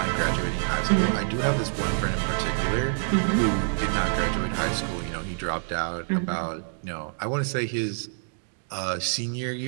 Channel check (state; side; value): silent; left; digital silence